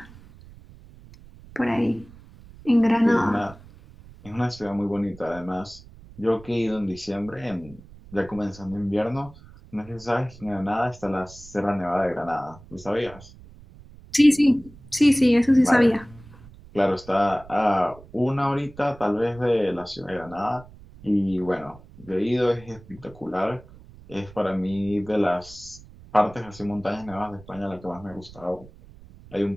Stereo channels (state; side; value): noise; right; rumble, 21 dB below the sound